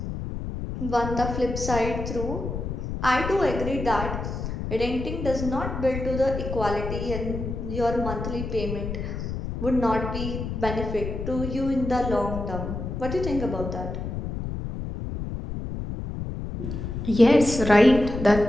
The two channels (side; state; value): left; noise; rumble, 5 dB below the sound